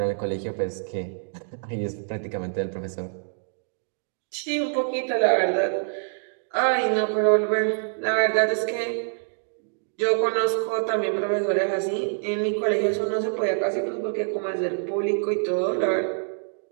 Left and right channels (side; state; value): left; silent; digital silence